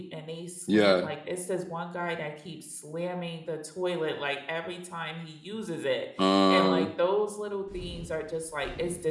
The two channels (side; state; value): both; identical; correlation 1.00